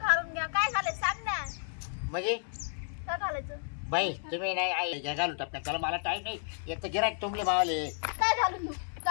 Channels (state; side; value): silent; right; 57 dB below the other